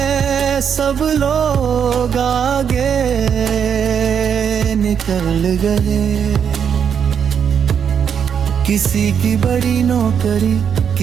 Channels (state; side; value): quieter; left; 7.6 dB